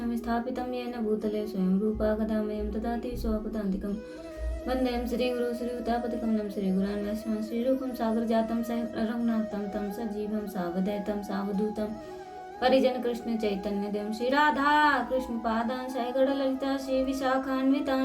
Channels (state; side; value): identical; both; correlation 1.00